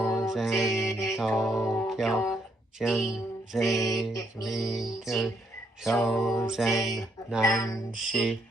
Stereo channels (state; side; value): normal; both; correlation 0.74